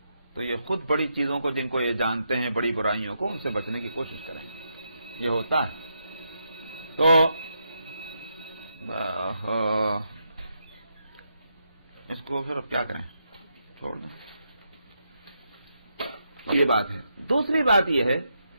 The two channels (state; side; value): inverted; both; correlation -0.82